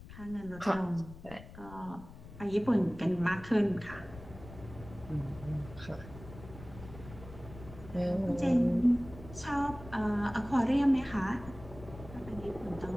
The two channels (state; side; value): noise; left; rumble, 16 dB below the sound